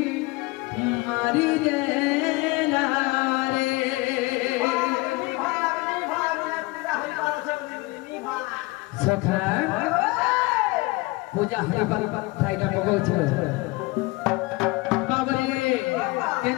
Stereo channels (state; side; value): quieter; right; 22.8 dB